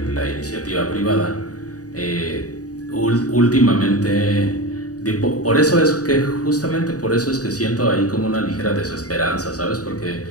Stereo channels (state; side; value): late; right; 0.67 ms